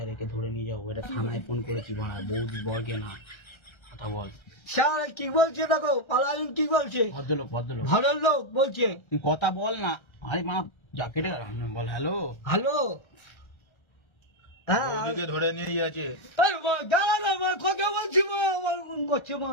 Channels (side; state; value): right; late; 1.3 ms